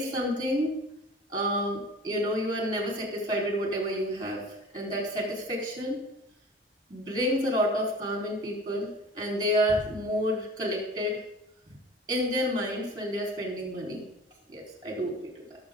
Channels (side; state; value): both; normal; correlation 0.41